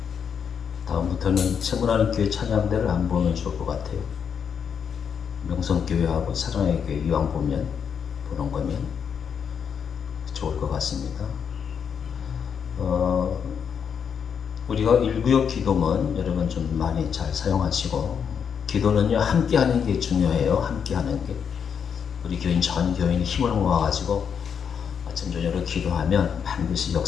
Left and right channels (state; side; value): quieter; right; 7.2 dB